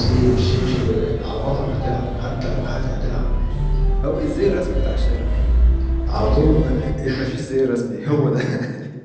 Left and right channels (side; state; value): both; identical; correlation 1.00